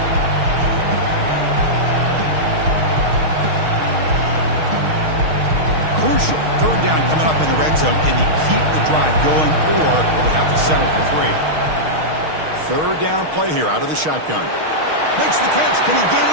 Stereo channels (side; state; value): left; late; 6.4 ms